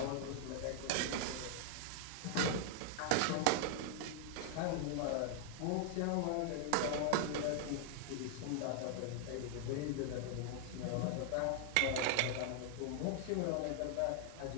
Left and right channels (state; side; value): different; both; correlation 0.00